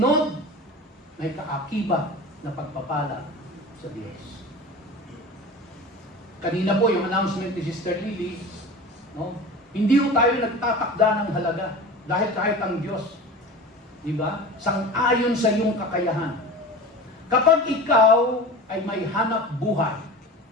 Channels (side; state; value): both; normal; correlation 0.34